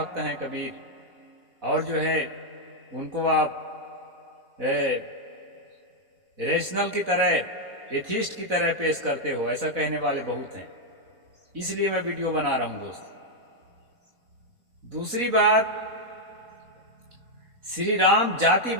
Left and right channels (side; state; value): left; late; 4.1 ms